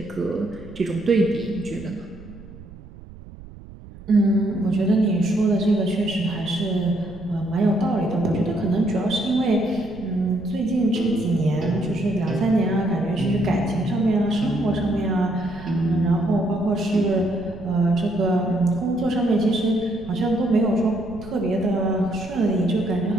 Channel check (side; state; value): right; noise; rumble, 18 dB below the sound